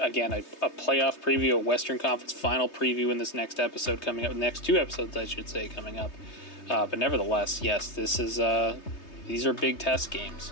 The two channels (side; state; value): right; late; 3.2 ms